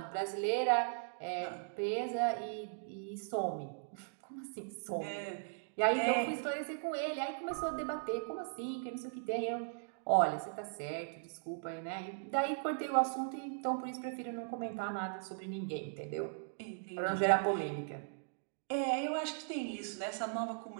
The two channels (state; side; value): silent; left; digital silence